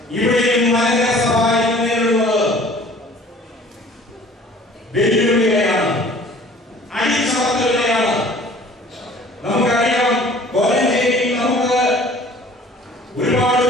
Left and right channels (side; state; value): both; normal; correlation 0.50